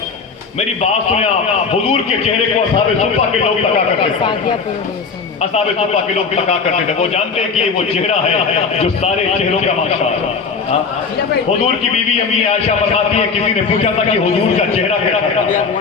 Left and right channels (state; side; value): quieter; right; 5.2 dB